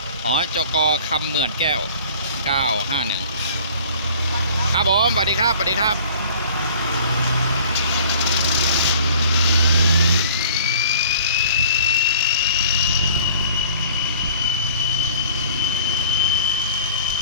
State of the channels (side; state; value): both; inverted; correlation -0.48